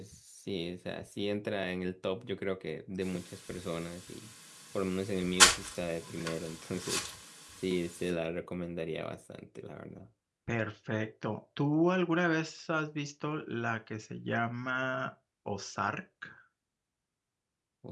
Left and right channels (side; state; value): both; identical; correlation 1.00